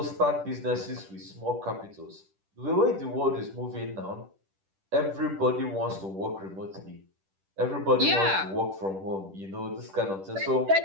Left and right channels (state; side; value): late; left; 10 ms